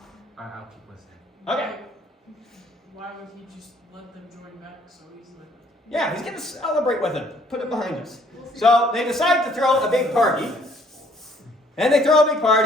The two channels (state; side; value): normal; both; correlation 0.62